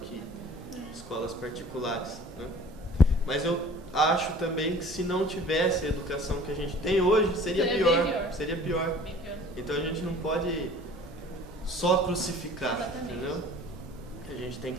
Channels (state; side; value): normal; both; correlation 0.48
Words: que escolas particulares, né? Mas eu acho também que se não tivesse a educação que a gente tem hoje, seria pior. Seria pior. Então a gente não pode só crucificar. Exatamente. Entendeu? A gente tem